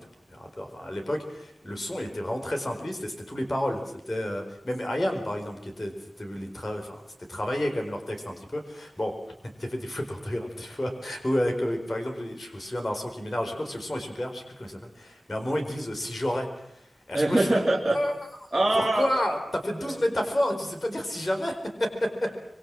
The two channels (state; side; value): normal; both; correlation 0.96